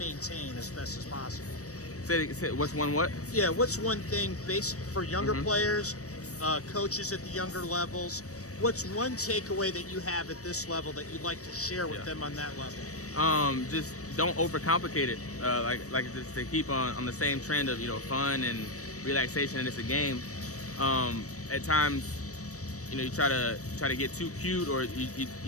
as best as possible? Say what's one what? Yeah, what's one thing for younger players, coaches at the younger levels, what's one takeaway that you have at this level that you'd like to share with them on that level? Just don't overcomplicate it. Like just to keep on the same trend of fun and relaxation, and it's a game. At times, you try to get too cute, or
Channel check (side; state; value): right; late; 0.66 ms